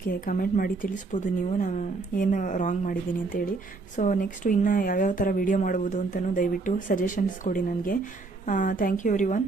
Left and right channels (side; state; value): left; quieter; 3.8 dB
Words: ಕಮೆಂಟ್ ಮಾಡಿ ತಿಳಿಸ್ಬೋದು ನೀವು, ನಾನು ಏನು ರಾಂಗ್ ಮಾಡಿದ್ದೀನಿ ಅಂತೇಳಿ. ಸೊ ನೆಕ್ಸ್ಟು ಇನ್ನು ಯಾವ್ಯಾವ ಥರ ವಿಡಿಯೋ ಮಾಡ್ಬೋದು ಅಂತಲೂ ದಯವಿಟ್ಟು ಸಜೆಷನ್ಸ್ ಕೊಡಿ ನನಗೆ. Thank you everyone.